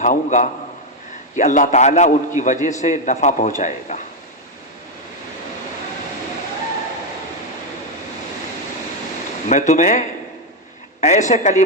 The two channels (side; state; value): both; normal; correlation 0.04